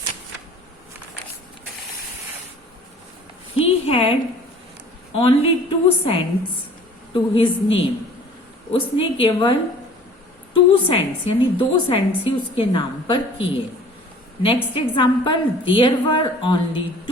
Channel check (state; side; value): normal; both; correlation 0.49